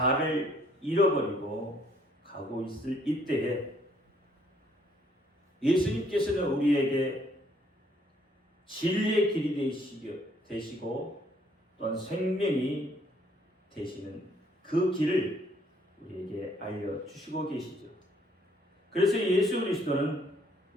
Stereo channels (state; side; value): normal; both; correlation 0.66